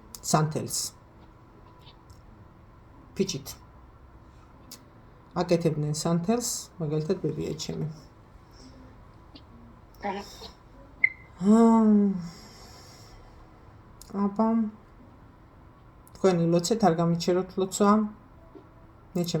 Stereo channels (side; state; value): both; identical; correlation 1.00